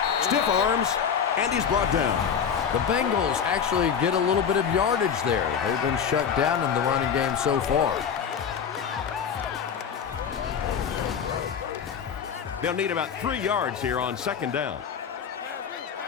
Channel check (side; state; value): right; quieter; 7.3 dB